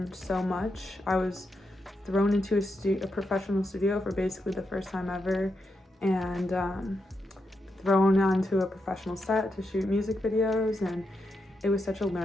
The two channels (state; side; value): normal; both; correlation 0.84